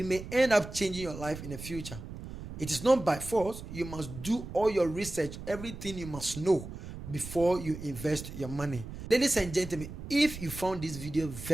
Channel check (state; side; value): noise; right; rumble, 11 dB below the sound